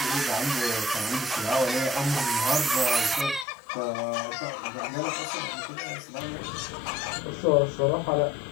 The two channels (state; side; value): drops out; right; at 3.5 s